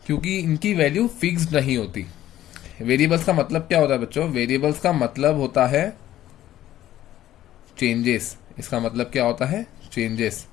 क्योंकि इनकी वैल्यू फिक्स्ड नहीं होती। वेरिएबल्स का मतलब क्या होता है बच्चों? वेरिएबल्स का मतलब होता है चेंजेस। इसका मतलब क्या होता है? चेंजेस।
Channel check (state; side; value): quieter; right; 13.2 dB